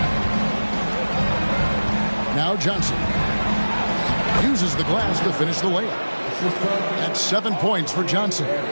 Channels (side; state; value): both; inverted; correlation -1.00